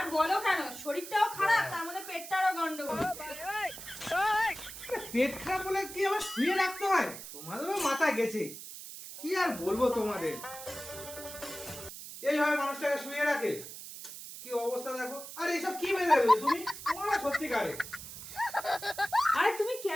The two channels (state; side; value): noise; right; hiss, 12 dB below the sound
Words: বলো কেন, শরীরটাও খারাপ, তার মধ্যে পেটটারও গন্ডগোল। পেট খারাপ বলে কি আবার শুয়ে রাখতে হয়? তোমাদেরও মাথা গেছে, কি আর বলবো তোমাদের। এইভাবে মানুষটাকে শুয়ে রাখে, কি অবস্থা দেখো। আর এইসব কি মেনে তুমি? তোমরা সত্যিকারে আরে তুমি